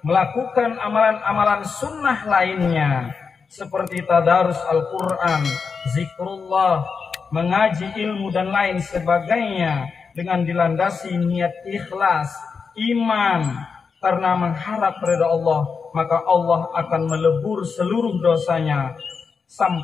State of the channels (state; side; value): quieter; right; 5.4 dB